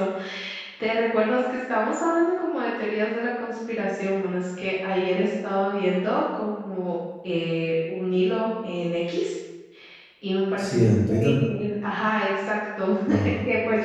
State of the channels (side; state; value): both; identical; correlation 1.00